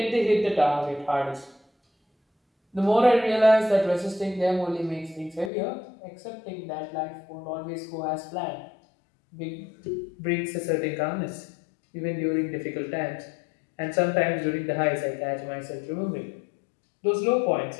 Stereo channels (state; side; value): drops out; right; at 5.5 s